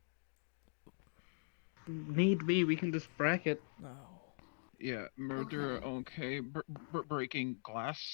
Need be, we can just bracket. No. Yeah, murder, okay. Breaking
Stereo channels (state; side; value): silent; right; digital silence